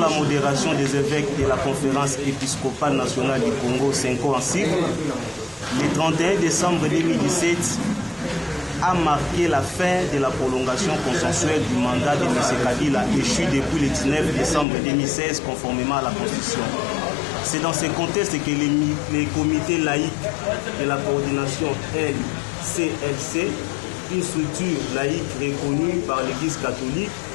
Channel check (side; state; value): right; drops out; at 14.7 s